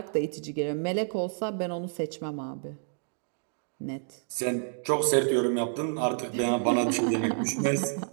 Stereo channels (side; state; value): left; silent; digital silence